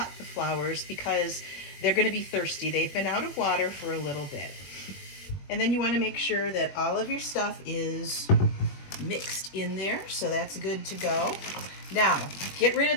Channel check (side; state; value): right; late; 21 ms